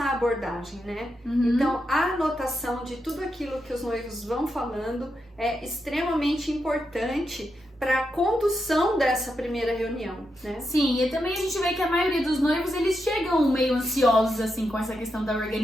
abordagem, né? Então, a anotação de tudo aquilo que os noivos vão falando é extremamente importante para a condução dessa primeira reunião, né? Sim, e também a gente vê que a maioria dos noivos, eles chegam meio ansiosos, assim, com essa questão da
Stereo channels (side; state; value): both; normal; correlation 0.85